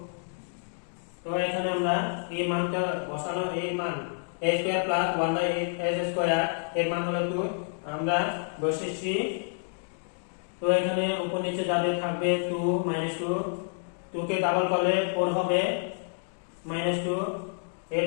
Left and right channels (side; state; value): right; silent; digital silence